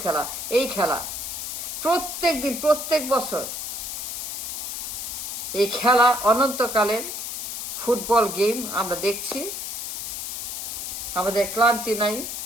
খেলা। এই খেলা প্রত্যেক দিন, প্রত্যেক বছর এই খেলা অনন্তকালের ফুটবল গেম আমরা দেখছি। আমাদের ক্লান্তি নাই,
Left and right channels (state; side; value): noise; left; hiss, 5 dB below the sound